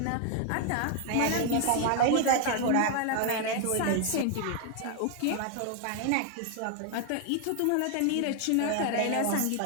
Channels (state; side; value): different; both; correlation 0.00